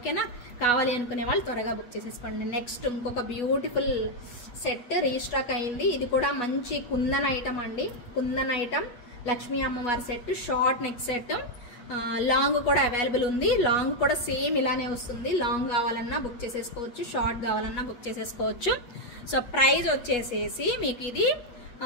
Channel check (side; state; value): right; late; 8.2 ms